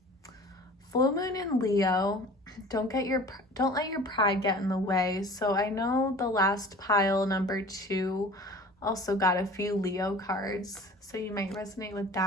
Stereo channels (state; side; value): normal; both; correlation 0.43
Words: Full moon in Leo. Don't let your pride get in the way. So I know the last pile, number 2, also got a few Leo cards, so you might resonate with